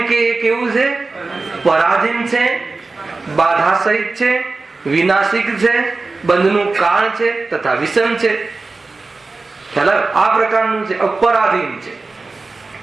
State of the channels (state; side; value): quieter; left; 3.7 dB